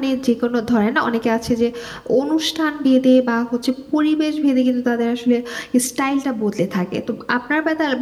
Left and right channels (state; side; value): identical; both; correlation 1.00